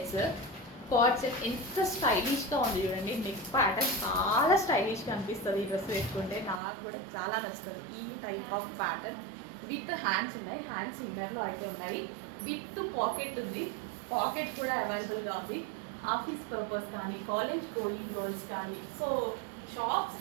Card set ఎంత స్టైలిష్గా ఉంది చూడండి. నెక్ ప్యాటర్న్ చాలా స్టైలిష్గా అనిపిస్తుంది. ఈ డ్రెస్ వేసుకుంటే నాకు కూడా చాలా నచ్చుతుంది. ఈ type of pattern with hands ఉన్నాయి, హ్యాండ్స్ ఇన్నర్లో అయితే ఉన్నాయి. విత్ పాకెట్ ఉంది, పాకెట్ కూడా అవైలబుల్గా ఉంది. ఆఫీస్ పర్పస్ కానీ, కాలేజ్ గోయింగ్ గర్ల్స్ కానీ, సో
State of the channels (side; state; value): left; drops out; at 6.6 s